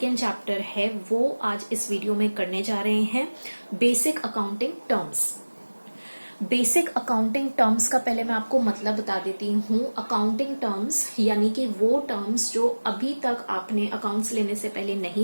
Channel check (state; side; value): inverted; both; correlation -1.00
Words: चैप्टर है वो आज इस वीडियो में करने जा रहे हैं, basic accounting terms. Basic accounting terms का पहले मैं आपको मतलब बता देती हूँ। अकाउंटिंग टर्म्स यानी कि वो टर्म्स जो अभी तक आपने अकाउंट्स लेने से पहले